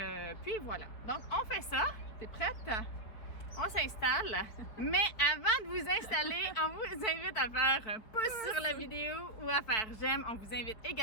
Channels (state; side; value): late; right; 4.6 ms